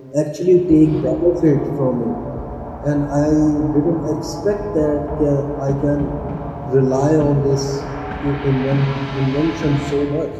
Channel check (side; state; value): both; identical; correlation 1.00